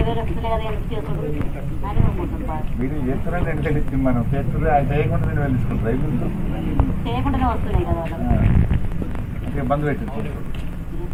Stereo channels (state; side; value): identical; both; correlation 1.00